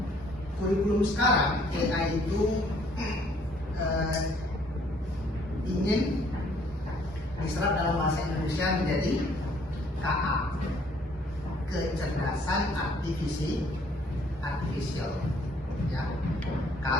Kurikulum sekarang AI itu ingin diserap dalam bahasa Indonesia menjadi KA, kecerdasan artifisial. Ya.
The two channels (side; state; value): right; noise; hum, 23 dB below the sound